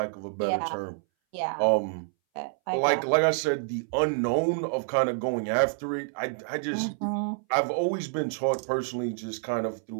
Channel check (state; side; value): silent; left; 59 dB below the other